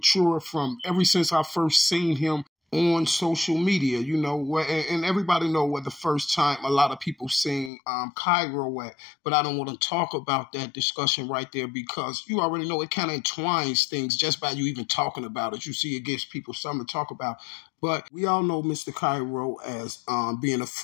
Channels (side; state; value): right; drops out; at 7.7 s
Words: from ever since I first seen him on social media, you know, and everybody know where the first time a lot of people seen Kyro at, but I don't want to talk about that discussion right there because you already know it kind of entwines things just by you even talking about it. You see, it gives people something to talk about. But we all know Mr. Kyro as being a